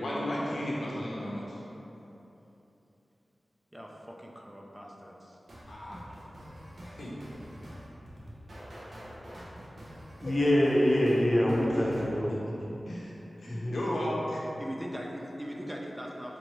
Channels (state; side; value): normal; both; correlation 0.96